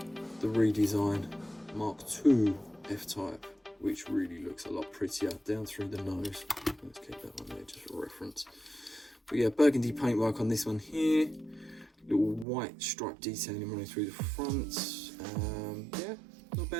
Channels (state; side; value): drops out; left; at 12.5 s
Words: the redesign Mark II F-Type, which really looks a lot prettier down through the nose. Let's keep that one there just for reference. But yeah, burgundy paintwork on this one here. Little white stripe detailing running through the front. Yeah, not